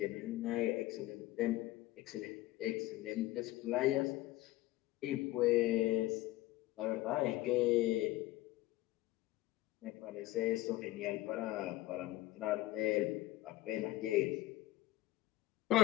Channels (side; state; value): right; quieter; 16.7 dB